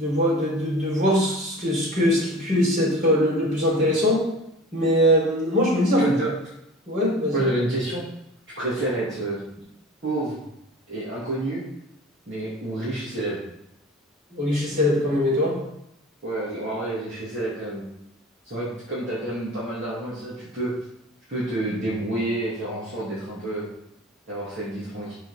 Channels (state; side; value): normal; both; correlation 0.39